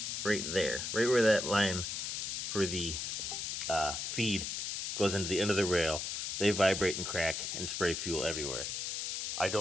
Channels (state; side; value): noise; left; hiss, 3 dB below the sound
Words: right there, right where that line for the feed goes into the end of the rail. They vibrate and crack and spray fuel everywhere. I